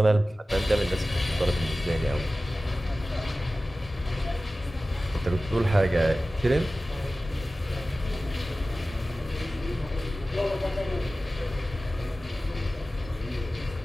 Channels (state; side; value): normal; both; correlation 0.96